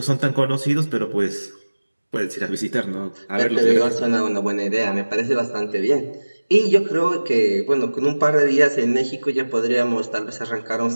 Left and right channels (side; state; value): both; inverted; correlation -1.00